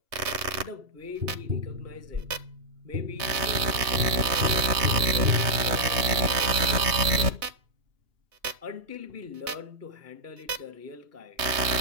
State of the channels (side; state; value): left; late; 3.2 ms